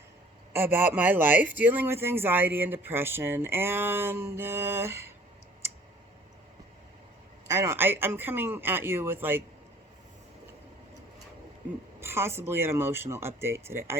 about my life dealing with anxiety and depression. And I'm coming at you with like possibly an emotional update today. I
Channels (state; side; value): normal; both; correlation 0.53